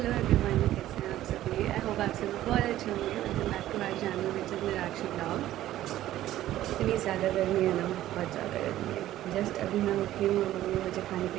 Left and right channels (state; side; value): quieter; left; 13.8 dB